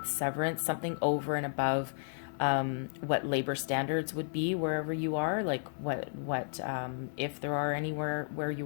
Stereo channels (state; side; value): silent; right; 56 dB below the other